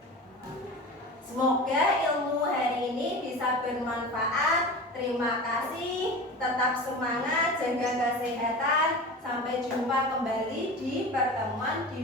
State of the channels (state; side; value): normal; both; correlation 0.32